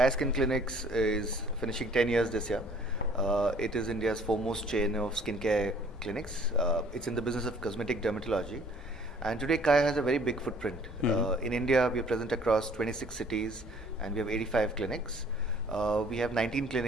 Skin Clinics is finishing 10 years this year. It is India's foremost chain of skincare clinics. It's in the business of cosmetic dermatology. And today Kaya has a very big footprint. In India, we are present across 26 cities and we have 85 clinics. We have 19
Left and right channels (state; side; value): normal; both; correlation 0.56